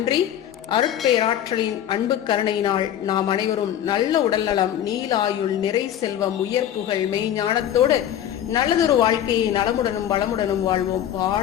அருட்பேராற்றலின் அன்பு கருணையினால் நாம் அனைவரும் நல்ல உடல்நலம், நீலாயுள், நிறை செல்வம், உயர் புகழ், மெய்ஞானத்தோடு நல்லதொரு வாழ்க்கையை நலமுடனும் வளமுடனும் வாழ்வோம்.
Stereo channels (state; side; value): quieter; right; 10.8 dB